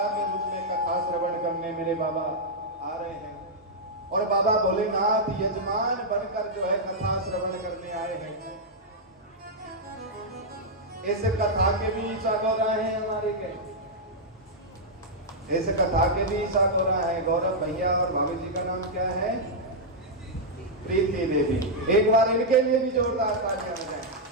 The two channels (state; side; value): normal; both; correlation -0.05